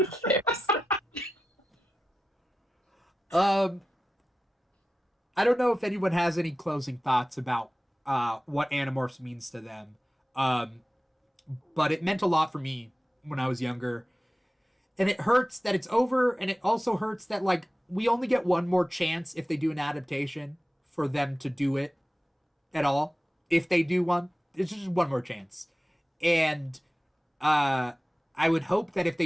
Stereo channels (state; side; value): normal; both; correlation 0.94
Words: affairs. I don't know if anyone has any closing thoughts about what Animorphs means to them. But it meant a lot for me when I was younger. And it hurts that it's over, and it also hurts that, like, we only get one more chance if they do an adaptation for them to do it at all. If they do one, it's just one more chance. And I would hope that if